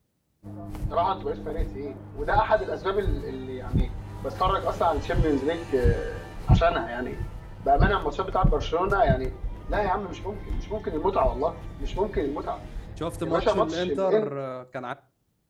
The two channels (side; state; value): both; identical; correlation 1.00